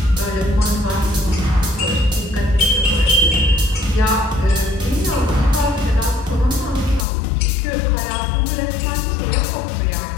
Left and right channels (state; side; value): drops out; right; at 7.1 s